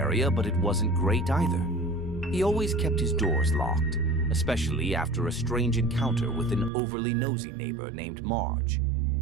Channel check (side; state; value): left; drops out; at 6.7 s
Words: but it wasn't great either. He always kept his doors locked, especially after a strange encounter with an overly nosy neighbor named Marge.